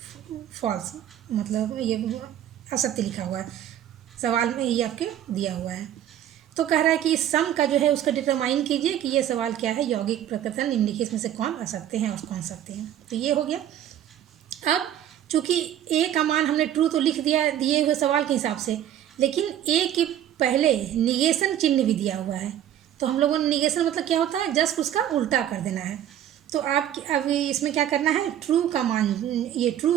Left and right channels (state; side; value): quieter; left; 11.1 dB